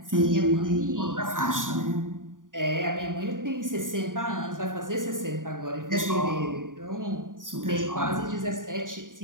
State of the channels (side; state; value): left; late; 0.89 ms